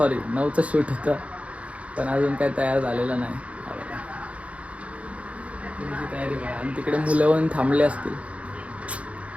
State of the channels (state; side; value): late; left; 0.064 ms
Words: शूट होतं, पण अजून काही तयार झालेलं नाही. तुमची तयारी करा. आणि तिकडे मुलं येऊन थांबले असतील